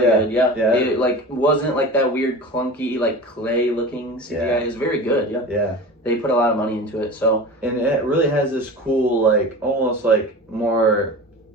good. Yeah. It like wasn't like that weird clunky like clay looking CGI. It was very good. Yeah. Yeah. They put a lot of money into it. So. And it really has this cool like almost like more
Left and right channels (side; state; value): both; normal; correlation 0.33